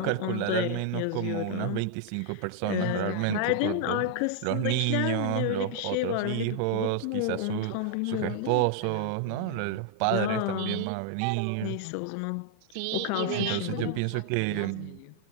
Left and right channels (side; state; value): both; different; correlation 0.00